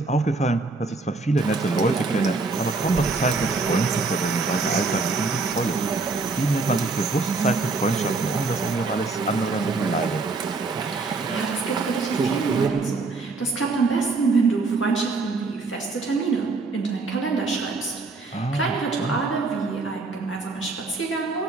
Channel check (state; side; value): quieter; left; 3.8 dB